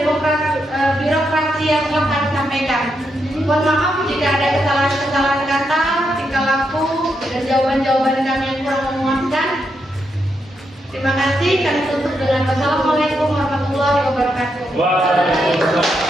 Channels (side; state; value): both; normal; correlation 0.81